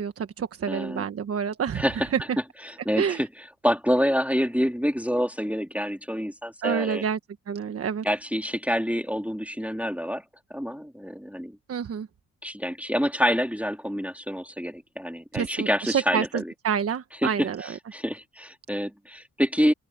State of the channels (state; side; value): normal; both; correlation 0.69